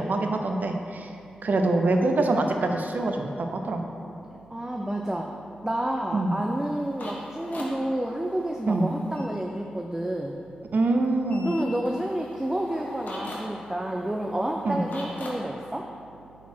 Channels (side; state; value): right; noise; hum, 25 dB below the sound